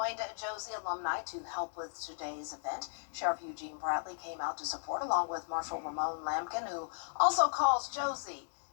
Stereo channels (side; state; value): right; silent; digital silence